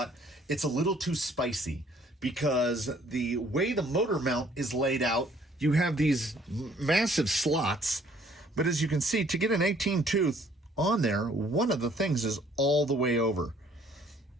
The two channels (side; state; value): both; normal; correlation 0.60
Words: it's a little too spicy because the way the motor mount is laid out, you have these massive slots, but as you can see, to get an 18-tooth on there, one of the things is all the way over.